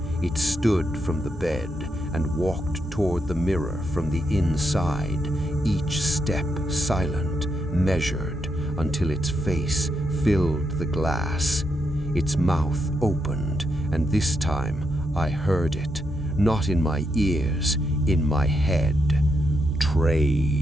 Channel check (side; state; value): both; normal; correlation 0.81